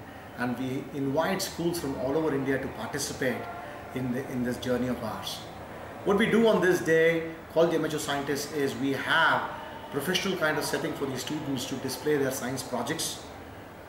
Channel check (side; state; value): both; identical; correlation 1.00